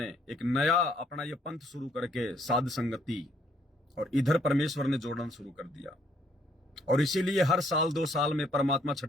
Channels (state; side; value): normal; both; correlation 0.67